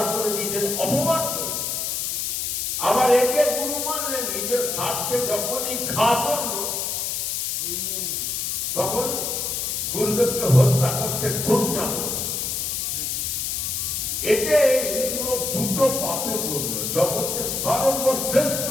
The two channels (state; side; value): noise; left; hiss, 1 dB below the sound